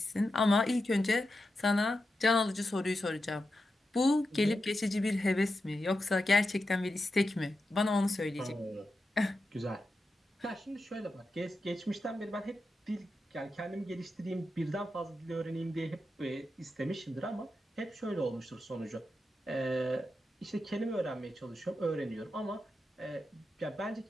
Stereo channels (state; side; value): normal; both; correlation 0.89